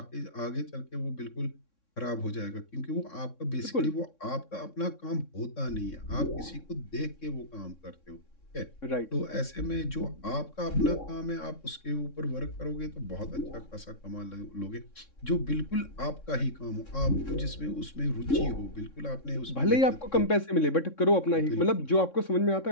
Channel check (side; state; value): right; late; 3.6 ms